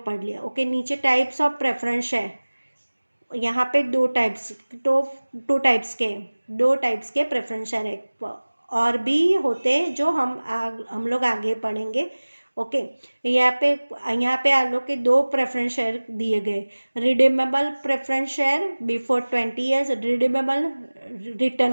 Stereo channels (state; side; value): inverted; both; correlation -1.00